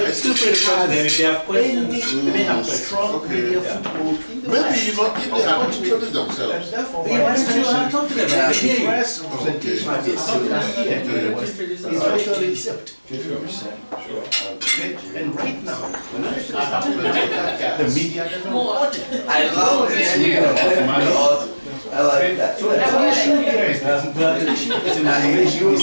still pretty confident if they have questions. They have strong media foothold in the Maybe, West. you know, if they have introduced And themselves. therefore, Yeah, that's true. I'm talking about the it. Yeah. press representation of the African here in the West is virtually zipped. Okay? And right now, when I have the media doesn't report it. I love this. I like that. So the issue here is this. The issue is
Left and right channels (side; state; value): both; inverted; correlation -1.00